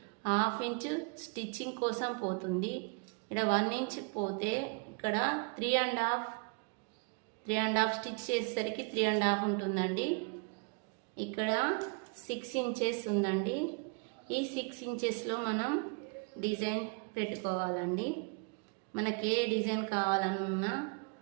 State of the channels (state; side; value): quieter; left; 35.8 dB